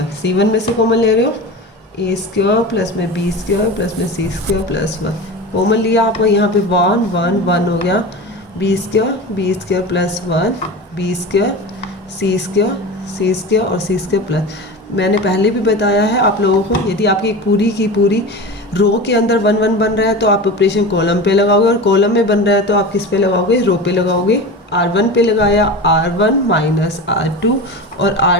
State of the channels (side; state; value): both; normal; correlation 0.29